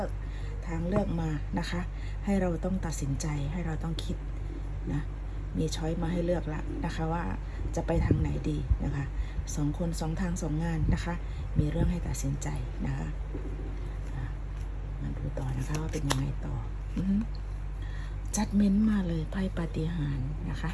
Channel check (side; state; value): both; identical; correlation 1.00